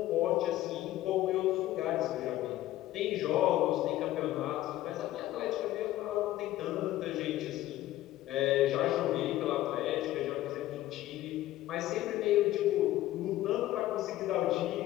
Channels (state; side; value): quieter; right; 14.9 dB